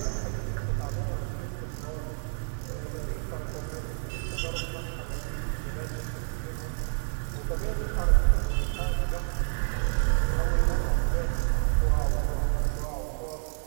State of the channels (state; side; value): silent; left; 59 dB below the other